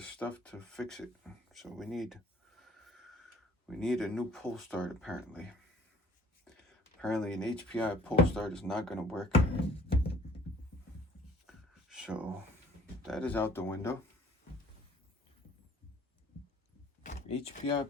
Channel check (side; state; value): both; normal; correlation 0.55